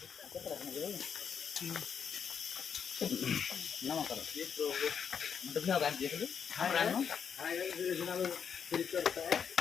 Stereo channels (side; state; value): right; quieter; 7.2 dB